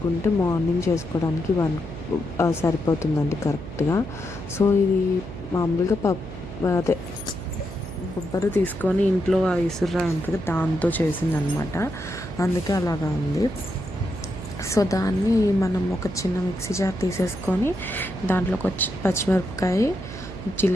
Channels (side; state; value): right; noise; hum, 12 dB below the sound